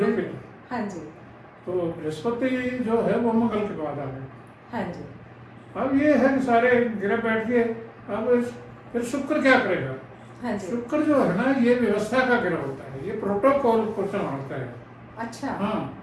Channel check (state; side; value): identical; both; correlation 1.00